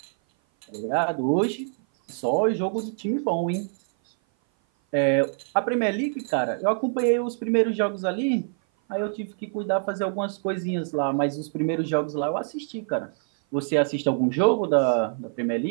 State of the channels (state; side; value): silent; left; 57 dB below the other